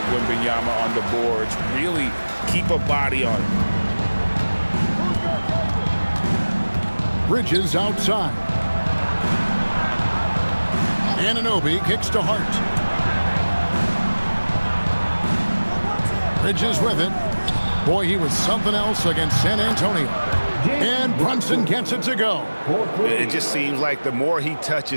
Wembanyama on the boards. Really keep a body on him. Bridges outside. Anunoby kicks to Hart. Bridges with it. Boy, he was something else against San Antonio. And Brunson gets it to go. It just seems like the more he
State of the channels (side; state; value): both; inverted; correlation -1.00